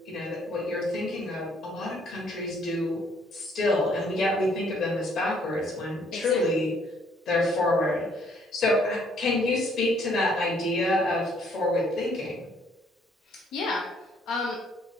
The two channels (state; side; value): normal; both; correlation 0.65